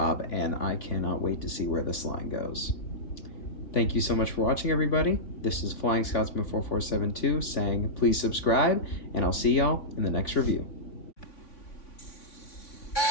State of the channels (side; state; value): right; late; 3.5 ms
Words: and I cannot wait to see where this line goes. Thank you so much for watching, everybody. This is Flying Scotsman 4472 saying please subscribe, and I'll see y'all in the next review.